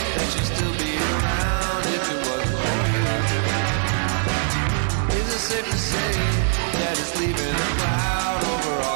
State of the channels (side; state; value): left; silent; digital silence